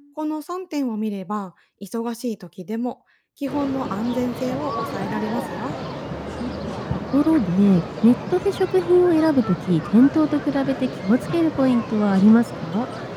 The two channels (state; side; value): identical; both; correlation 1.00